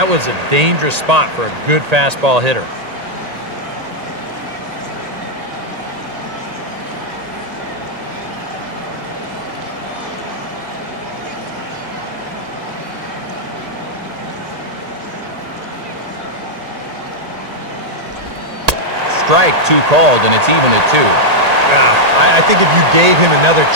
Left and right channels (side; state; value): left; late; 1.8 ms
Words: was a dangerous spot for a good fastball hitter. Strike 2 called, and it's even at 2. I think if you gave him another